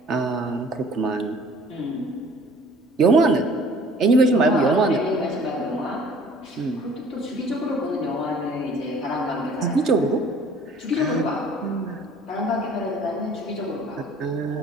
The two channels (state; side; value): normal; both; correlation 0.52